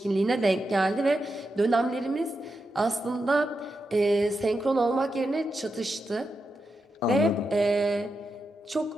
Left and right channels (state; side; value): normal; both; correlation 0.87